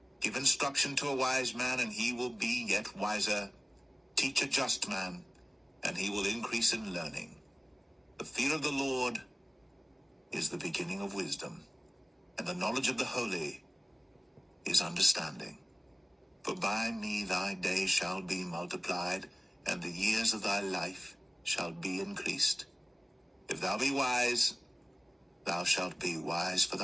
Give instruction to a wise man, and he will be yet wiser. Teach a just man, and he will increase in learning. The fear of the Lord is the beginning of wisdom, and the knowledge of the holy is understanding. For by me thy days shall be multiplied, and the years of thy life shall be increased. If thou be wise, thou shalt be wise for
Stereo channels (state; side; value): normal; both; correlation 0.97